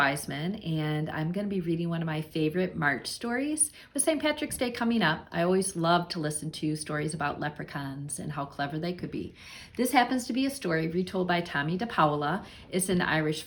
and I'm going to be reading one of my favorite March stories. With St. Patrick's Day coming up, I always love to listen to stories about leprechauns and how clever they could be. This happens to be a story retold by Tomie DePaola. It's an Irish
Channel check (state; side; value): identical; both; correlation 1.00